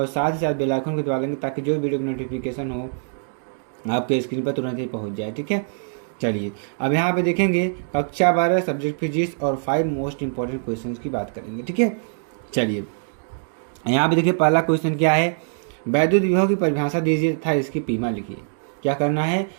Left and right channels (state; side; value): silent; left; digital silence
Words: साथ ही साथ बेल आइकन को दबा देंगे ताकि जो वीडियो की नोटिफिकेशन हो आपके स्क्रीन पर तुरंत ही पहुंच जाए। ठीक है, चलिए अब यहाँ पे देखेंगे कक्षा 12 सब्जेक्ट फिजिक्स और 5 मोस्ट इंपॉर्टेंट क्वेश्चंस की बात करेंगे। ठीक है, चलिए यहाँ पे देखिए पहला क्वेश्चन क्या है, वैद्युत विभव की परिभाषा दीजिए तथा इसकी पीमा लिखिए। क्या करना है,